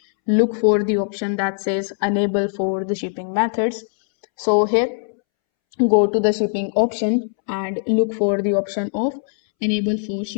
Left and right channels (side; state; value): right; silent; 65 dB below the other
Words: look for the option that says enable for the shipping methods. So here, go to the shipping option and look for the option of enable for